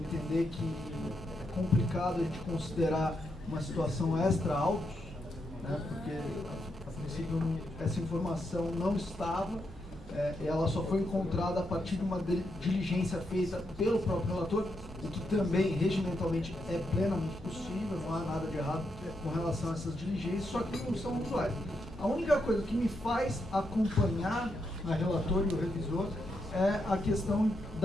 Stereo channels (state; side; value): normal; both; correlation 0.82